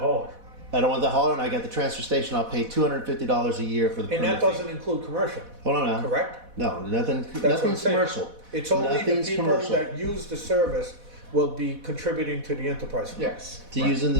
I don't want the hauler, and I got the transfer station. I'll pay $250 a year for the And permit that fee. doesn't include commercial, Hold on now. correct? No, nothing. That's what I'm Nothing's saying. commercial. It's only the Nothing's people commercial. that use the service will be contributing to the enterprise fund. Yes. To right. using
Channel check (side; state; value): left; late; 4.1 ms